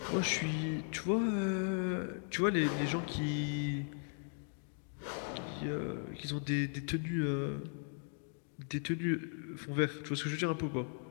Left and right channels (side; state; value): right; silent; 53 dB below the other